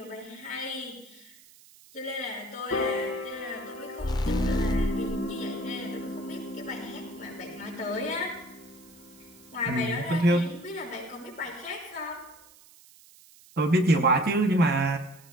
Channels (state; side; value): noise; right; hiss, 24 dB below the sound